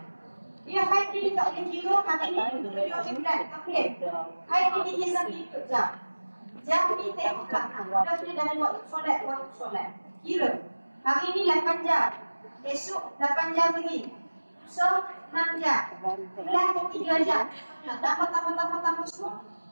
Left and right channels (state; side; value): inverted; both; correlation -1.00